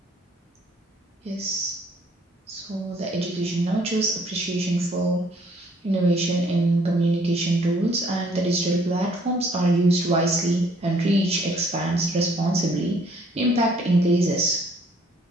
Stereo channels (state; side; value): normal; both; correlation 0.62